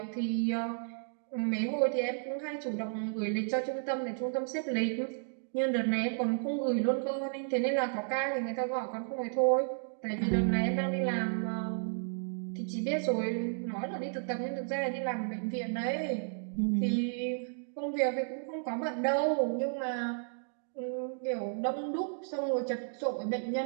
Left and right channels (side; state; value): left; silent; digital silence